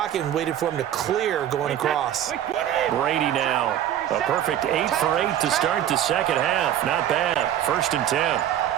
and waited for him to clear going across. Brady now. A perfect 8 for 8 to start the second half. Not bad. 1st and 10.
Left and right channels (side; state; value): left; quieter; 11.0 dB